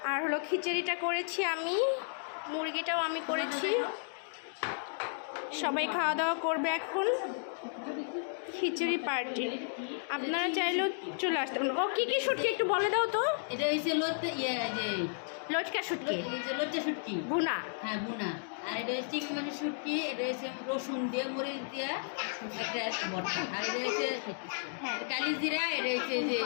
আর হলো খিচুড়িটা করেছি আমি, মুরগিটাও আমি করেছি। সবাই খাওয়া দাওয়া করবে এখন। খিচুড়ি পার্টি, আপনারা চাইলেও চলে আসতে পারেন। ও কি কি শুটকি একটু বলে দাও তো। এটা হচ্ছে লটকা শুটকি, লজ্জা শুটকি ভুনা। হ্যাঁ, ভুনা। আর এটা হচ্ছে চিংড়ি মাছের শুটকি, এটা হচ্ছে রসুন দিয়ে মরিচ দিয়ে একটা ভর্তা। আর এটা হচ্ছে কালি জিরা, এটা হচ্ছে যে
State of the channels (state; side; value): silent; right; digital silence